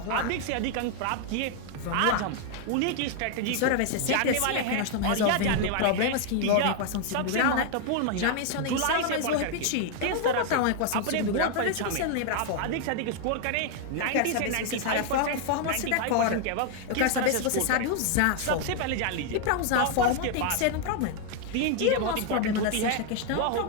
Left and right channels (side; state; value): both; different; correlation 0.00